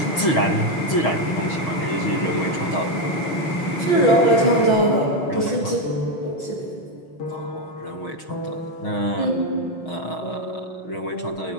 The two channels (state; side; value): late; right; 6.3 ms